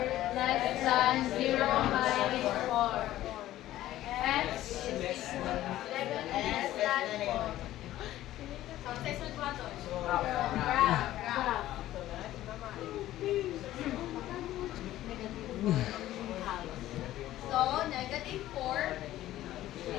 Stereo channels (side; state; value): right; quieter; 14.3 dB